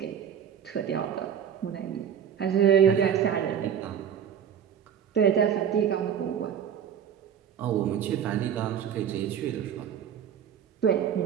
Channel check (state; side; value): quieter; left; 8.6 dB